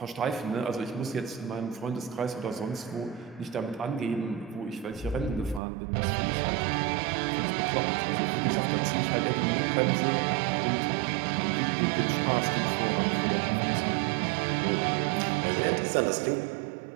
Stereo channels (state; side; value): drops out; left; at 5.6 s